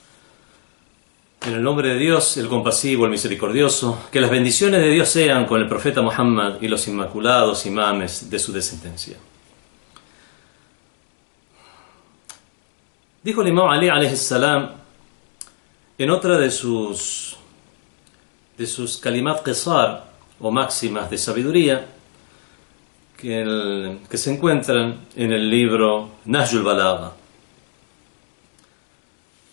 En el nombre de Dios, el compasivo, el misericordioso, que las bendiciones de Dios sean con el profeta Muhammad y los inmaculados imames de su descendencia. Dijo el imam Ali alayhi salam en otra de sus kalimat qisar o máximas de sabiduría que se encuentran en el libro Nahjul Balagha:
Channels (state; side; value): silent; right; digital silence